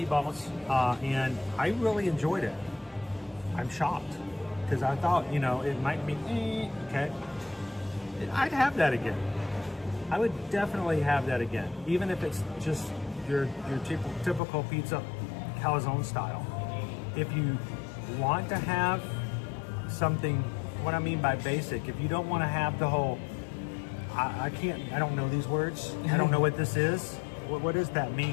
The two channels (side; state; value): right; drops out; at 14.4 s